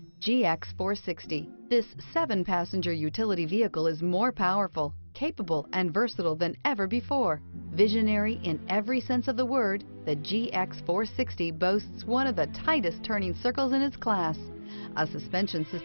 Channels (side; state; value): both; inverted; correlation -1.00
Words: GX 460. This 7-passenger utility vehicle is more powerful, capable, and versatile than ever before. Visionary in every sense of the word, the GX 460 boasts one of the tightest turning circles in its class, a suspension